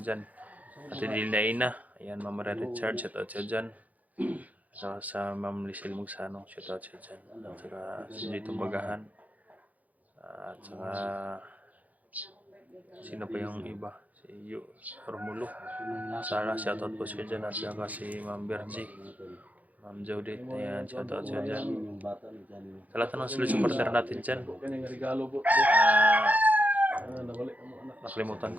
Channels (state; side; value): late; left; 0.077 ms